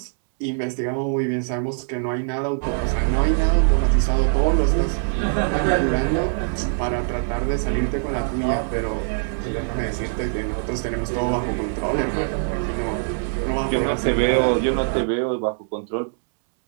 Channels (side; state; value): left; silent; 64 dB below the other